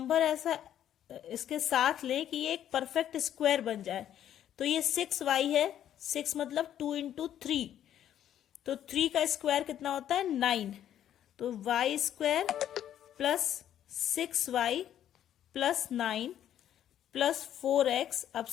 ऐसा इसके साथ लें कि ये एक परफेक्ट स्क्वायर बन जाए। तो ये 6y है, 6 मतलब 2 इंटू 3, तो 3 का स्क्वायर कितना होता है 9। तो y square plus 6y plus 9 plus 4x, अब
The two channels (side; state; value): right; quieter; 10.7 dB